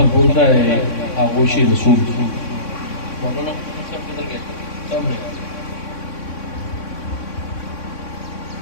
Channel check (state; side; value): late; right; 3.6 ms